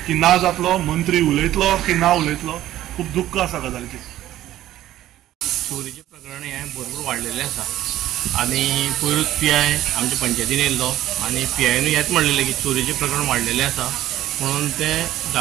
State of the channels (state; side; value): quieter; left; 13.7 dB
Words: की ना जातलो, मंत्री उलयतलो की ना उलयतलो। खूब दुख्ख आसा गजालीचेर। चोरीचे प्रकरण हे भरपूर वाडलेले आसा आनी पयरूच PI आमच्या पंचायतीन येयल्लो आनी PIनूय हेच म्हणलेलें की चोरीचे प्रकरण वाडलेले आसा म्हणून ते